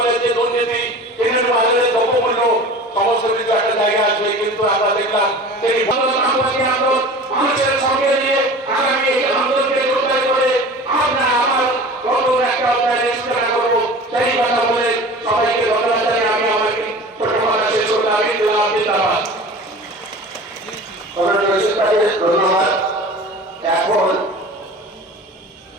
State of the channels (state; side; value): normal; both; correlation 0.38